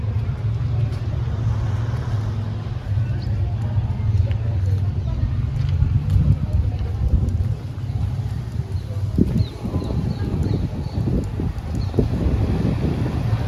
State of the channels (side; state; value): both; identical; correlation 1.00